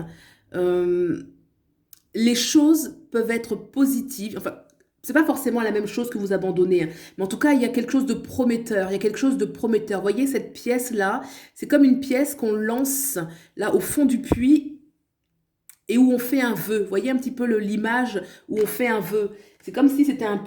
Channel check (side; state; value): both; identical; correlation 1.00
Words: euh, les choses peuvent être positives. Enfin, c'est pas forcément la même chose que vous abandonnez, hein. Mais en tout cas, il y a quelque chose de prometteur. Il y a quelque chose de prometteur. Vous voyez, cette pièce-là, c'est comme une pièce qu'on lance là au fond du puits et où on fait un vœu. Vous voyez un petit peu l'image où on fait un vœu. C'est comme si c'était un